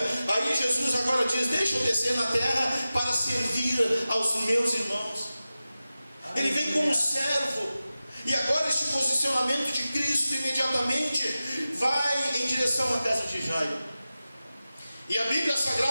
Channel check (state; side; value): inverted; both; correlation -0.95